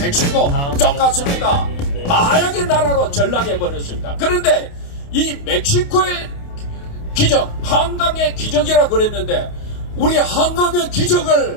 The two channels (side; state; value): right; late; 28 ms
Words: 똑같습니다. 마약의 나라로 전락해버렸습니다. 그런데 이 멕시코의 기적, 한강의 기적이라 그랬는데 우리 한강의